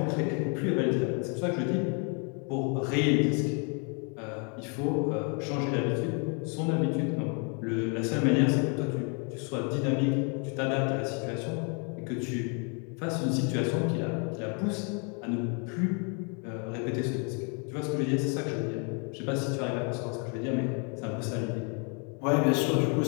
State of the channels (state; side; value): quieter; right; 37.4 dB